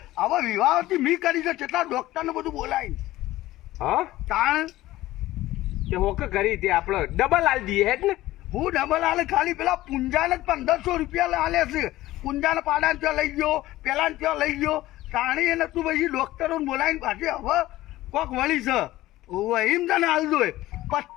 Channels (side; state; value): right; quieter; 16.3 dB